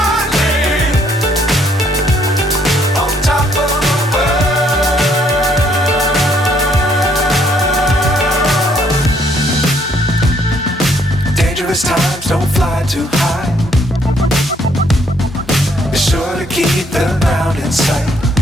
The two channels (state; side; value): normal; both; correlation 0.67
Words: Times don't fly too high. Be sure to keep the ground in sight.